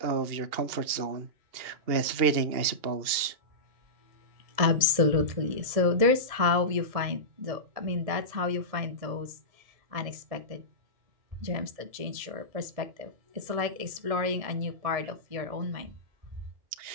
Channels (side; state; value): left; late; 1.7 ms